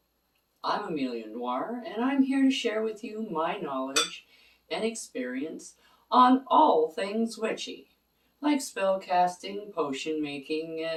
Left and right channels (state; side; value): identical; both; correlation 1.00